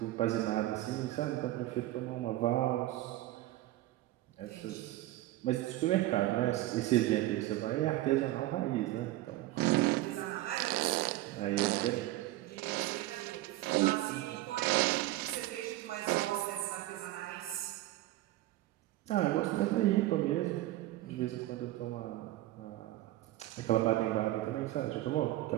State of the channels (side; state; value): left; quieter; 16.3 dB